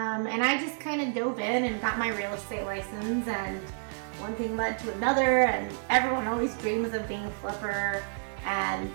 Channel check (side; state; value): left; silent; digital silence